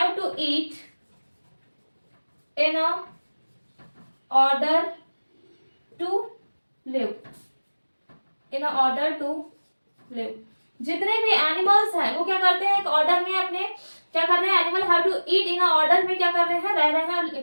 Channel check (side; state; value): both; inverted; correlation -1.00